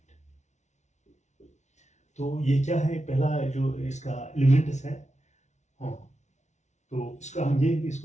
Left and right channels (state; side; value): late; right; 0.33 ms